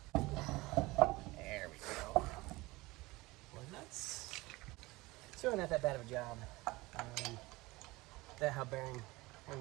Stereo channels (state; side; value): quieter; left; 21.3 dB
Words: There we go. Well, nuts. It's really not that bad of a job. That hub bearing,